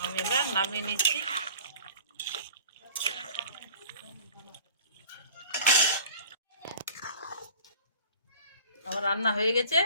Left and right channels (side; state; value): both; inverted; correlation -0.46